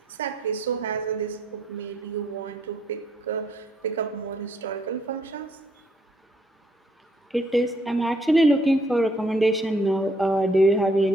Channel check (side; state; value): both; normal; correlation 0.68